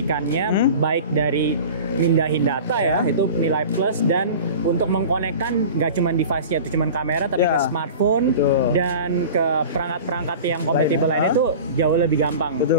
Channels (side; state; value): both; inverted; correlation -0.37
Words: baik dari mindahin data ya, itu nilai plus, dan untuk mengkonekkan nggak cuma device-nya itu cuma kamera, tapi ke smartphone dan ke perangkat-perangkat yang kompatibel lainnya itu jauh lebih gampang.